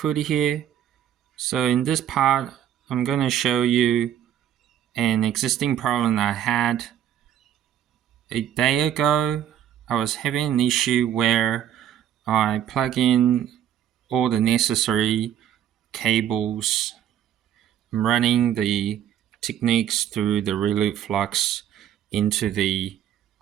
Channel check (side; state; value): left; quieter; 10.4 dB